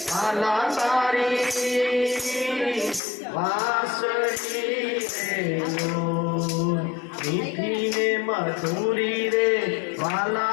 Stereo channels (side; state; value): right; drops out; at 3.0 s